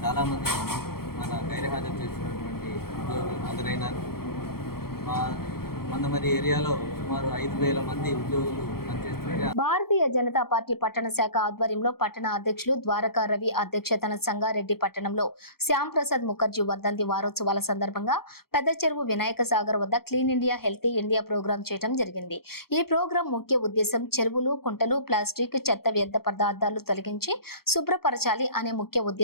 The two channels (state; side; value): late; right; 0.94 ms